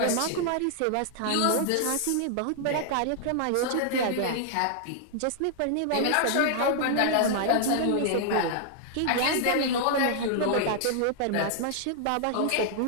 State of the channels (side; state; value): both; different; correlation -0.01